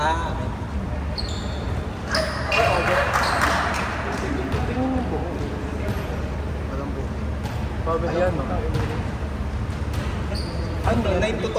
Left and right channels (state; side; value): identical; both; correlation 1.00